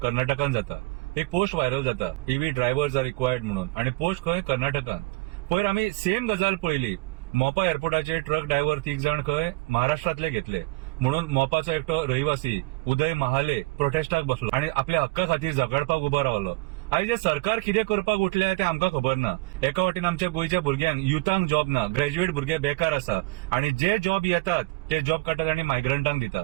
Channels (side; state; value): left; quieter; 24.1 dB